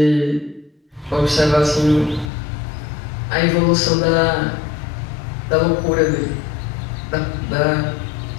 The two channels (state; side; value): drops out; right; at 2.3 s